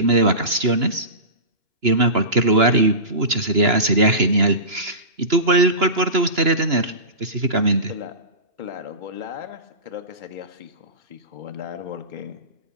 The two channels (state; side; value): late; left; 2.9 ms